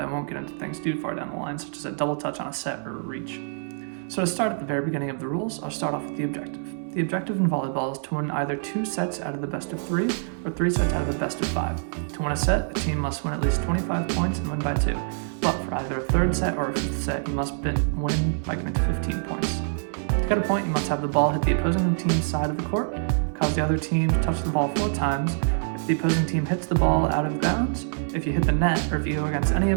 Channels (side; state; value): left; silent; digital silence